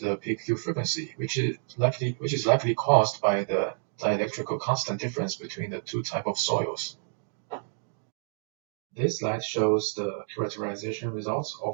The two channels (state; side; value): silent; left; digital silence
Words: the peak Q frequency, which is likely caused by the dielectrical constant difference between the two types of soils. This slide shows the characterization results